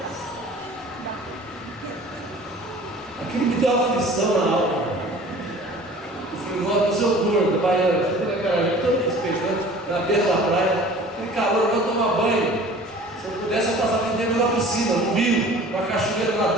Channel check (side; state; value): both; normal; correlation 0.46